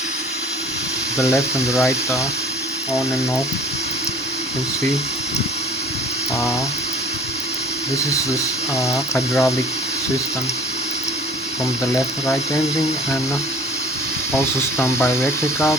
the left and the right on and off. You can see this is this hydraulic system from the left right engine, and also standby electrical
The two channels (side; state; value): both; normal; correlation 0.46